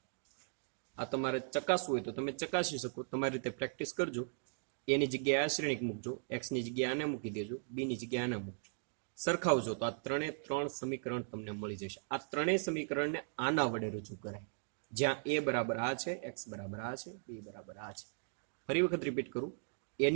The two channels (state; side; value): silent; left; digital silence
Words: આ તમારે ચકાસવું હોય તો તમે ચકાસી શકો. તમારી રીતે પ્રેક્ટિસ કરજો. એની જગ્યાએ આ શ્રેણિક મૂકજો, એક્સની જગ્યાએ આને મૂકી દેજો, બીની જગ્યાએ આને મૂકજો, સરખાવજો તો આ 3 સમીકરણ તમને મળી જશે. આ ત્રણેય સમીકરણને આના વડે રજૂ કરાય, જ્યાં એ બરાબર આ છે, એક્સ બરાબર આ છે, બી બરાબર આ છે. ફરી વખત રિપીટ કરું,